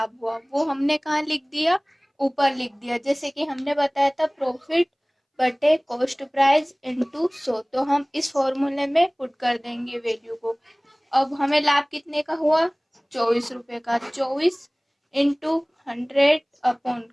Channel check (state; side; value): identical; both; correlation 1.00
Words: हुआ। वो हमने कहाँ लिख दिया? ऊपर लिख दिया। जैसे कि हमने बताया था प्रॉफिट बटे कॉस्ट प्राइस इनटू 100, तो हम इस फॉर्मूले में पुट कर देंगे वैल्यू को। अब हमें लाभ कितने का हुआ? 24 रुपए का। 24 इंटू 100 अपॉन